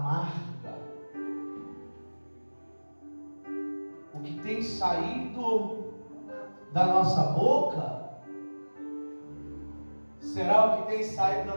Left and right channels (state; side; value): inverted; both; correlation -1.00